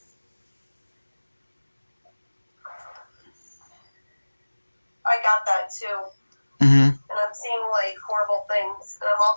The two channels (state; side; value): inverted; both; correlation -1.00